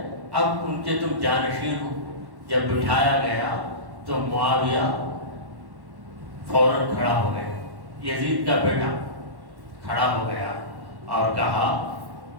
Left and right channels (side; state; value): left; late; 1.1 ms